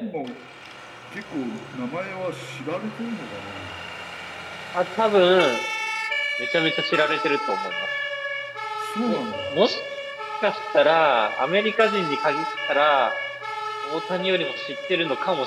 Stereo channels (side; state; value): both; identical; correlation 1.00